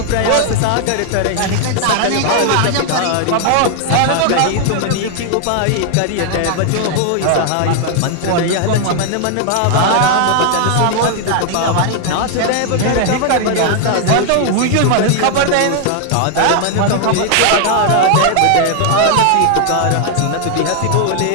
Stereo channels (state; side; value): different; both; correlation 0.00